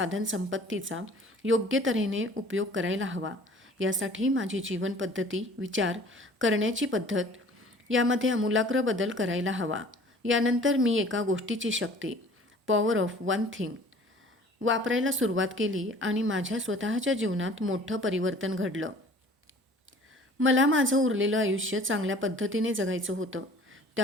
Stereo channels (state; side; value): normal; both; correlation 0.50